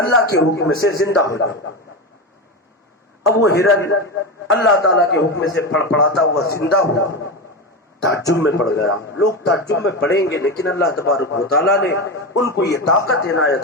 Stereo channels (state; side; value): normal; both; correlation 0.18